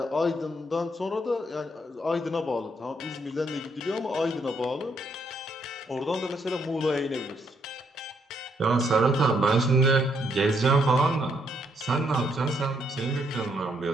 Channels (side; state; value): both; normal; correlation 0.73